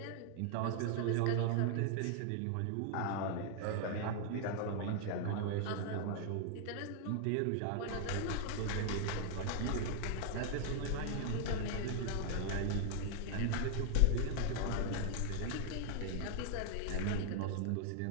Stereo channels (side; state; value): both; different; correlation 0.00